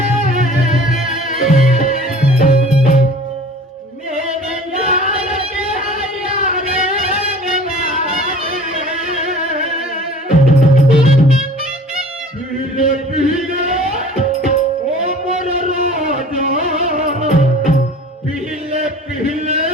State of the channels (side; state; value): both; normal; correlation 0.45